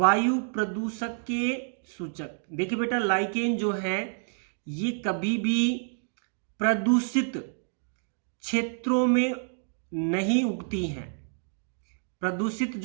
देखिए बेटा, लाइकेन जो है ये कभी भी प्रदूषित क्षेत्रों में नहीं उगती हैं। प्रदूषित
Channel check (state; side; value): silent; left; digital silence